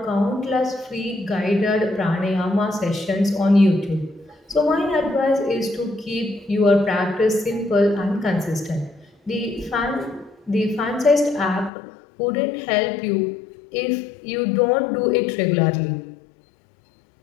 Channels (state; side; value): drops out; right; at 11.7 s